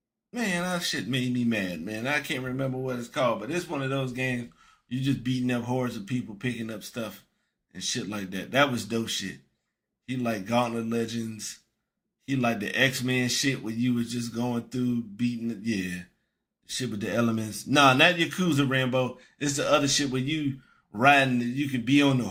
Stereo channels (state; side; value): identical; both; correlation 1.00